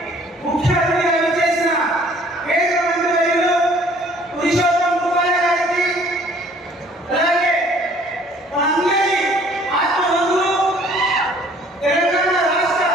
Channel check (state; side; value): normal; both; correlation 0.56